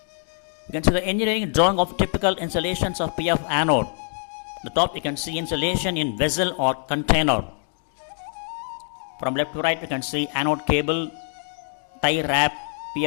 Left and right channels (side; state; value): right; silent; 58 dB below the other